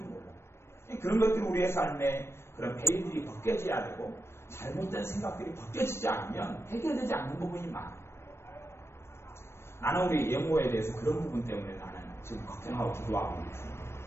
그런 것들이 우리의 삶에 그런 베일들이 벗겨져야 되고 잘못된 생각들이 벗겨지지 않으면 해결되지 않는 부분이 많아요. 나는 우리 예모에 대해서 그런 부분 때문에 나는 지금 걱정하고 기도하고 있습니다.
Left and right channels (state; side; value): late; right; 0.12 ms